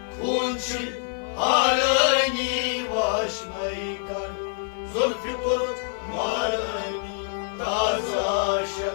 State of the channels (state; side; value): silent; right; digital silence